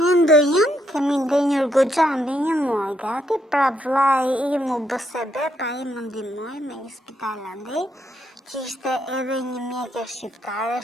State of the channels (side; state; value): both; normal; correlation 0.76